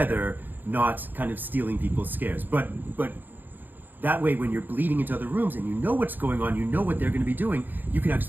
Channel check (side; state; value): left; late; 0.088 ms